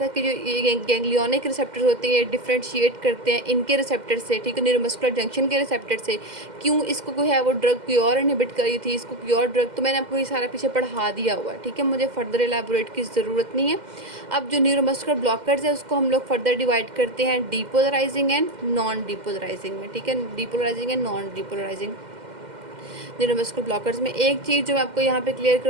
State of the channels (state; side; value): late; left; 2.1 ms